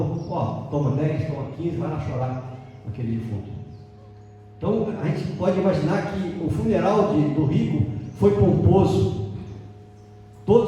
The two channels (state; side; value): identical; both; correlation 1.00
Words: toma 10, toma 15, vai lá chorar naquele defunto. Então a gente pode imaginar que o funeral do rico foi pomposo.